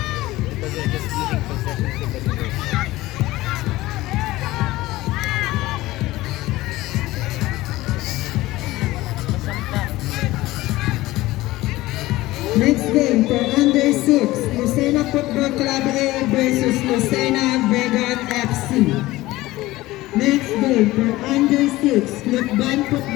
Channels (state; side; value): quieter; right; 18.1 dB